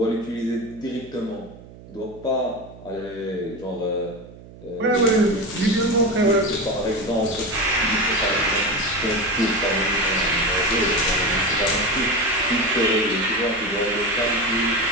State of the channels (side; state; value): right; noise; hum, 19 dB below the sound